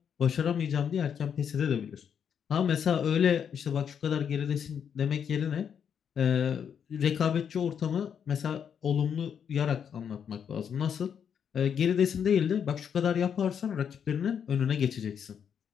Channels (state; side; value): quieter; right; 7.8 dB